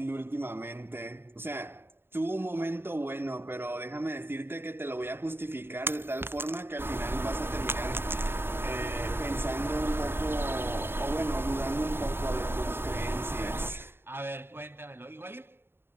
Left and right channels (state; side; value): late; left; 0.11 ms